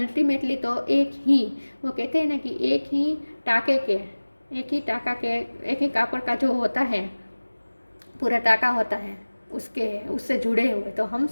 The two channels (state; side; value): inverted; both; correlation -1.00